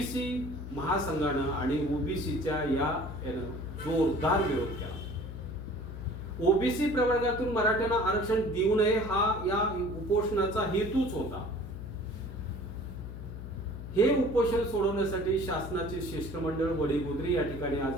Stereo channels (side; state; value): left; noise; hum, 9 dB below the sound